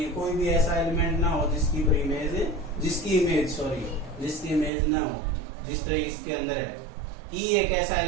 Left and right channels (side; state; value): left; drops out; at 4.7 s